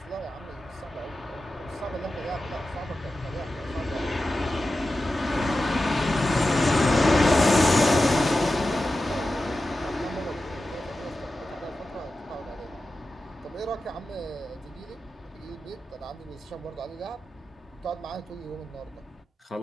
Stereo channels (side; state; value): both; normal; correlation 0.93